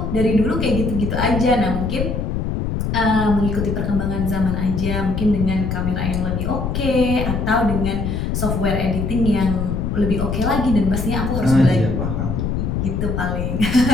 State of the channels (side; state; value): left; noise; rumble, 1 dB below the sound